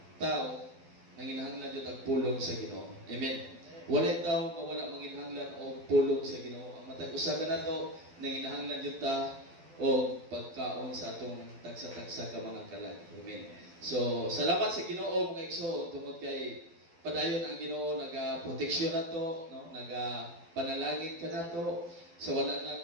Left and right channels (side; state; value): left; late; 12 ms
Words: tao nanginahanglan jud ang pulong sa Ginoo. Amen. Walay tao nga wala manginahanglan og pulong sa Ginoo. Ang matag usa ka nato nanginahanglan jud ta o pagkaon sa atong tagsa-tagsa ka mga kalag. Amen. So, salamat sa Ginoo mga igsoon tungod kay padayon ang Ginoo naga-proteksyon nato, no? Naga-panalangin ka nato. So wala